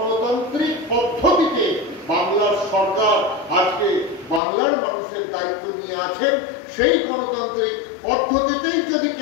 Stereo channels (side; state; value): right; drops out; at 4.4 s